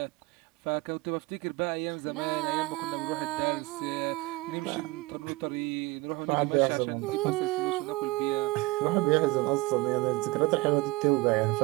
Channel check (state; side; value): quieter; left; 22.2 dB